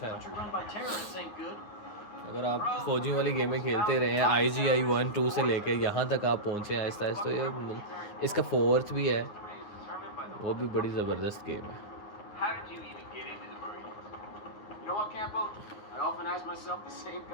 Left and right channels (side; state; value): right; late; 9.5 ms